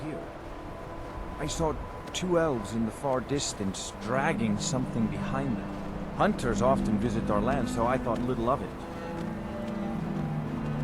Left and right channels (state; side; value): identical; both; correlation 1.00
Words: I saw two elves in the far distance dragging something behind them. Hunters often visit our land, so I thought little of it.